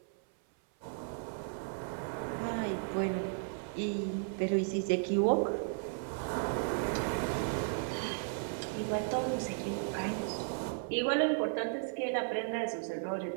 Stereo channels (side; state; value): left; silent; 54 dB below the other